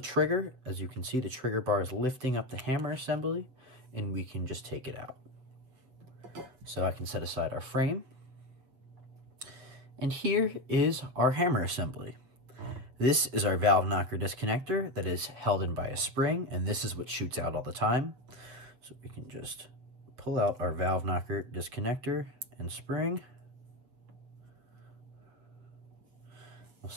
trigger. As you can see, the trigger bar is lifting up the hammer assembly, and we can just take it out. So I can set aside our frame. And here is our hammer assembly. This is our valve knocker disconnector that is held in by a spring, and this is what shoots out all the time. So we can just pull out our valve knocker disconnector and spring. We'll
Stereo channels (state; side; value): late; left; 7.6 ms